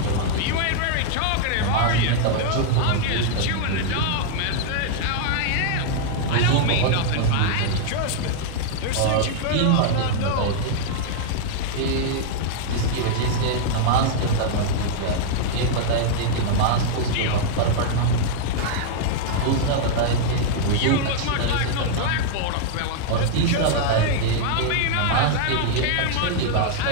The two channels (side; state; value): both; different; correlation -0.01